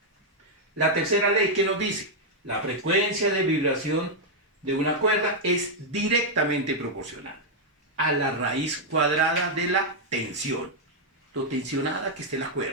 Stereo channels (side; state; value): both; normal; correlation -0.02